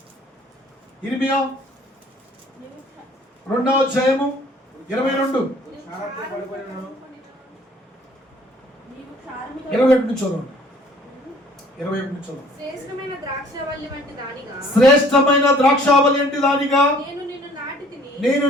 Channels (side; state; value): both; normal; correlation 0.56